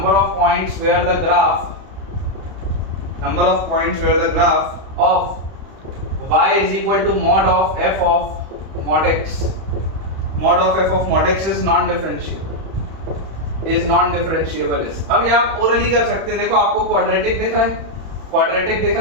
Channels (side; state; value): left; late; 31 ms